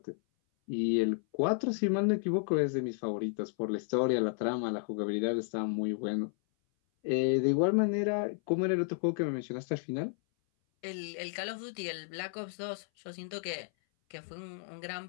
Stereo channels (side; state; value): right; silent; 56 dB below the other